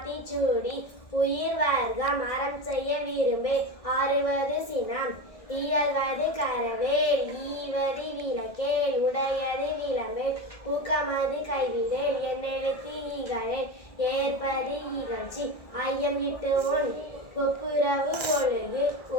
உயிர் வர்க்கம் அறம் செய்ய விரும்பே, ஆறுவது சினம், இயல்வது கரவேல், ஈவது விளக்கேல், உடையது விளம்பேல், ஊக்கமது கைவிடேல், என்னெழுத்து ஈகளேல், ஏற்பது இகழ்ச்சி, ஐயம் இட்டு உன் ஒப்புரவு ஒழுகு,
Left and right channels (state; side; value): late; right; 1.6 ms